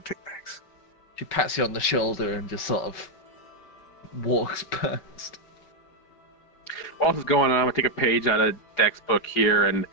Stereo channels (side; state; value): right; late; 4.9 ms